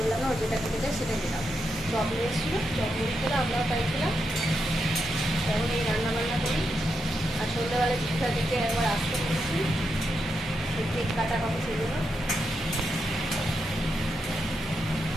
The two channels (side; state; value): both; normal; correlation 0.84